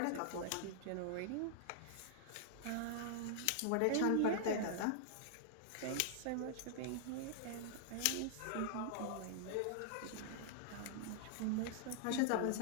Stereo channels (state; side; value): different; both; correlation -0.01